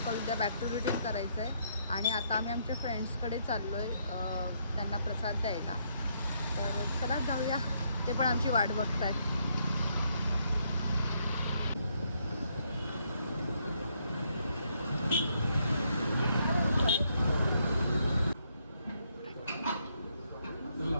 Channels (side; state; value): both; inverted; correlation -0.74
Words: उद्या बॅक टू रुटीन करायचं आहे. आणि आता आम्ही आमच्या फ्रेंड्सकडे चाललो आहे त्यांना प्रसाद द्यायला. तर चला जाऊया. ते पण आमची वाट बघतात.